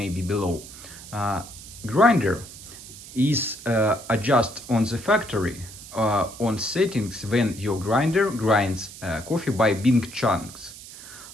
below. Grinder is adjust on the factory on settings when your grinder grinds coffee by big chunks.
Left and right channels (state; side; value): noise; right; hiss, 15 dB below the sound